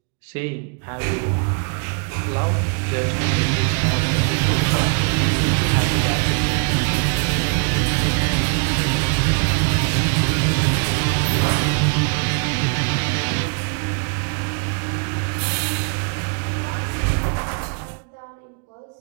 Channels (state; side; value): quieter; left; 37.0 dB